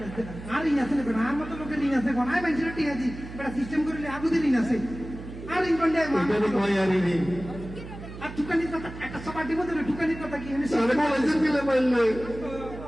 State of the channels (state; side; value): noise; right; hum, 13 dB below the sound